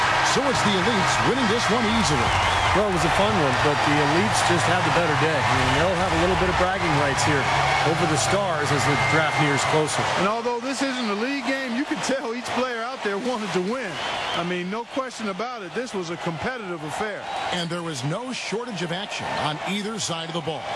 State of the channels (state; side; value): identical; both; correlation 1.00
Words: So it's the Elites winning this one easily. Well, it was a fun one, but the Elites just had the better day. I mean, they'll have a little bit of bragging rights here over the Stars as the draft nears closer. And although this isn't a league game, you can tell each player out there wanted to win. I mean, no question about it. This was a competitive affair. And there was no shortage of action on either side of the ball.